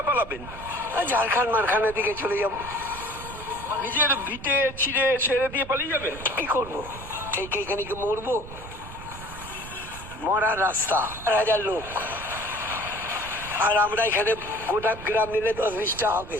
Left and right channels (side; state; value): right; noise; rumble, 14 dB below the sound